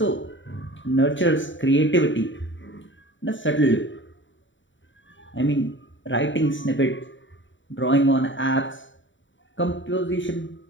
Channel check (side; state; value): right; late; 0.55 ms